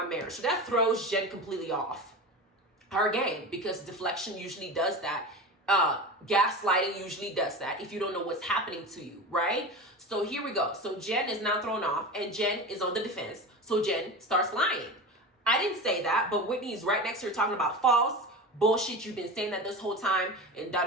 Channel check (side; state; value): both; normal; correlation 0.28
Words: marriage. So that throws Jen completely off her game because deflection usually does that. Gaslighting usually does that if you don't know what's happening to you, right? So here we go. So Jen is now thrown off and Jen is on the defense. So Jen starts lying. I didn't say that, but Whitney is right next to her talking about false bullshit. You've been saying that this whole time and